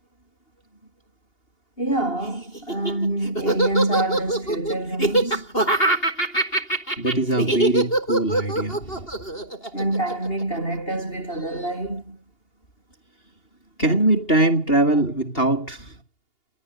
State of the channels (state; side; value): late; right; 2.8 ms